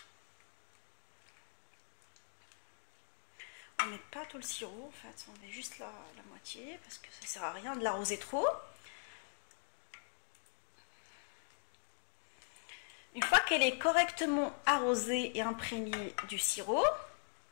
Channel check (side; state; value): right; silent; digital silence